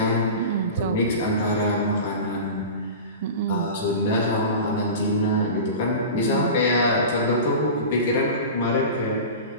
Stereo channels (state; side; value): inverted; both; correlation -0.31